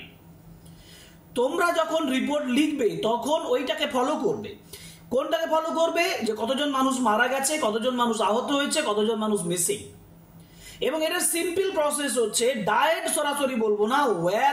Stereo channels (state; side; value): identical; both; correlation 1.00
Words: তোমরা যখন রিপোর্ট লিখবে তখন ওইটাকে ফলো করবে। কোনটাকে ফলো করবে? যে কতজন মানুষ মারা গেছে, কতজন মানুষ আহত হয়েছে, কতজন মানুষ মিসিং। এবং এটার সিম্পল প্রসেস হচ্ছে ডায়েট সরাসরি বলবো না,